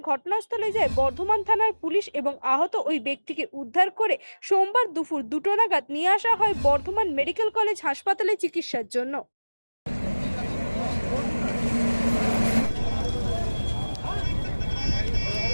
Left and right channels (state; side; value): inverted; both; correlation -1.00